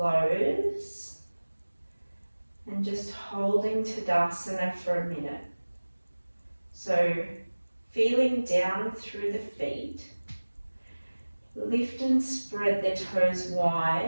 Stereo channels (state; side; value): inverted; both; correlation -1.00